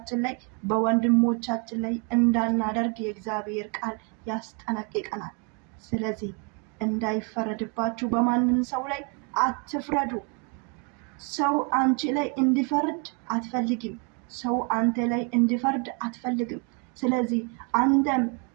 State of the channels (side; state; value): left; quieter; 35.7 dB